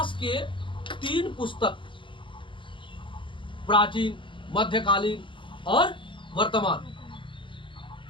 के 3 पुस्तक, प्राचीन, मध्यकालीन और वर्तमान,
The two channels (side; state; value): right; late; 0.24 ms